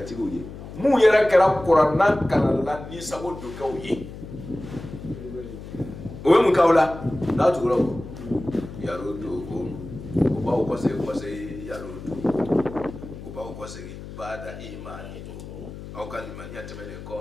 tigu ye mu yɛrɛ kɛra kuranna kalanla ni sago do kɛw ye o ye mun k'aw la n'a tugura o yaro do ko o b'aw kɔsegi yaro do o b'aw kɔsegi bada imani aw ka limaniya tɛmɛnen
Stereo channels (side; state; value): left; noise; hum, 12 dB below the sound